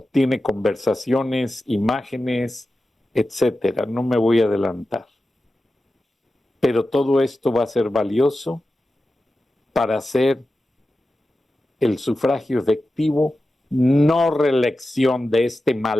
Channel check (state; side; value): normal; both; correlation 0.93